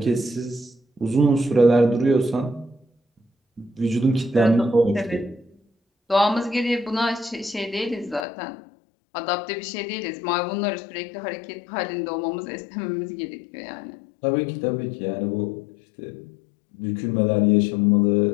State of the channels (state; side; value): drops out; right; at 8.2 s